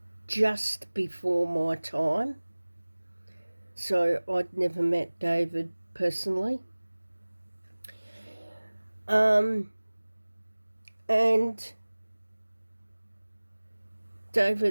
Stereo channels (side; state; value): both; inverted; correlation -1.00